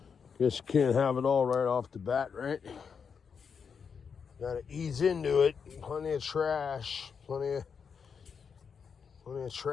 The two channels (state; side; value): quieter; right; 6.3 dB